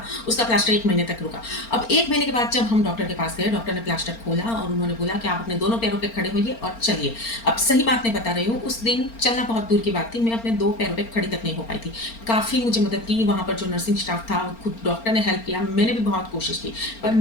उसका प्लास्टर 1 महीने तक रुका। अब 1 महीने के बाद जब हम डॉक्टर के पास गए, डॉक्टर ने प्लास्टर खोला और उन्होंने बोला कि आप अपने दोनों पैरों पे खड़े होइए और चलिए। अब सही बात नहीं बता रही हूँ, उस दिन चलना बहुत दूर की बात थी, मैं अपने 2 पैरों पे खड़ी तक नहीं हो पाई थी। काफ़ी मुझे मदद की वहाँ पर जो नर्सिंग स्टाफ था, खुद डॉक्टर ने हेल्प किया, मैंने भी बहुत कोशिश की, पर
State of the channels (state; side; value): late; right; 4.4 ms